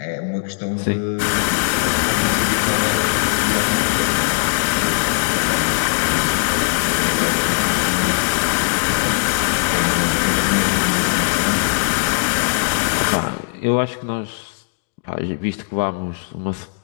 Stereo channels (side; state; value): right; silent; digital silence